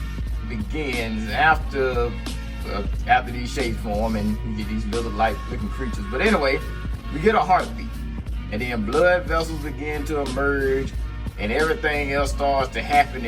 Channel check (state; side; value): identical; both; correlation 1.00